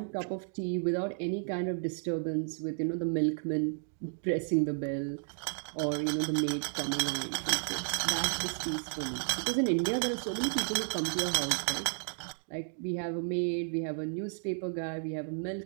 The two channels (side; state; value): left; silent; digital silence